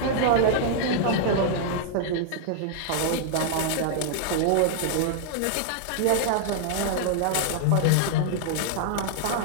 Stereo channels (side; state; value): both; different; correlation -0.01